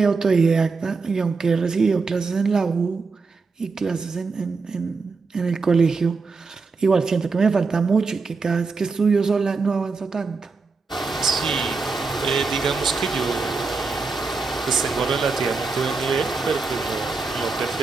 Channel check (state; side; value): quieter; left; 4.3 dB